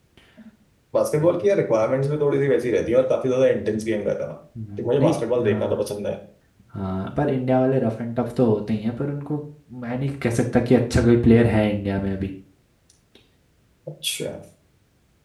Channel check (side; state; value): both; identical; correlation 1.00